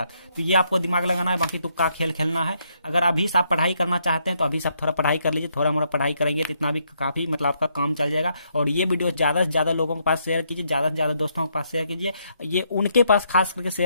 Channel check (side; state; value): both; inverted; correlation -0.74